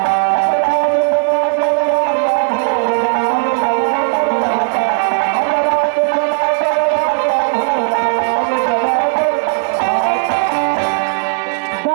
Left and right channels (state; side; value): silent; left; 70 dB below the other